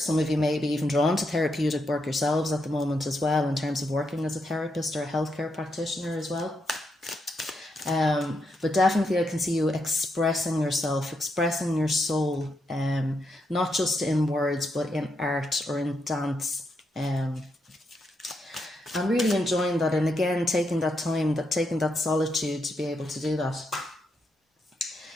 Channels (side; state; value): both; normal; correlation 0.81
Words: of you may be even drawn to therapeutic work yourselves at the moment as well, in terms of working as a therapist or a healthcare practitioner as well. But definitely I can see you expressing yourself, expressing your soul, not just in words, but in art or in dance. I'm really enjoying that, and again, taking that time, taking that solitude to be able to do that.